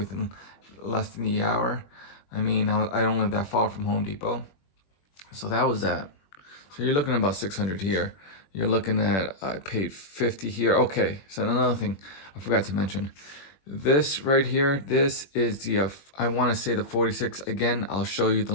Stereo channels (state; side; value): late; right; 21 ms